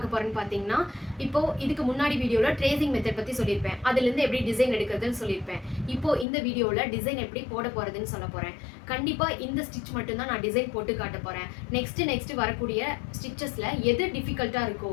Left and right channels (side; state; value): right; drops out; at 6.2 s